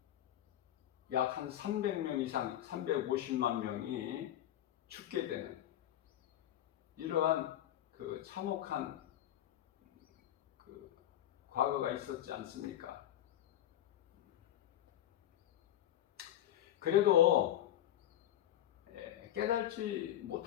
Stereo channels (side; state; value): right; quieter; 12.2 dB